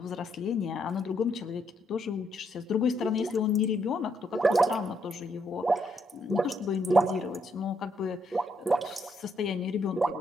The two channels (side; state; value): both; normal; correlation 0.75